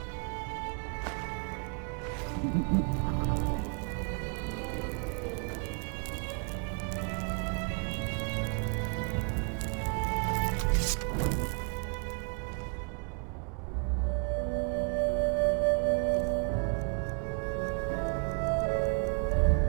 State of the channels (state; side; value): quieter; left; 38.4 dB